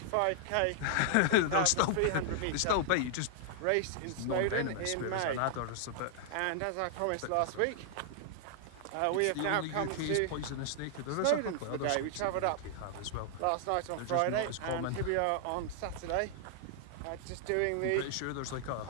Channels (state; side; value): different; both; correlation -0.01